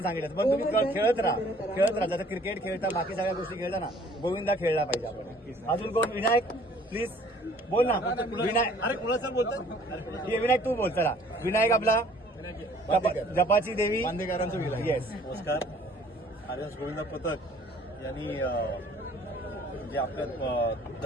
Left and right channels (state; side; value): normal; both; correlation 0.55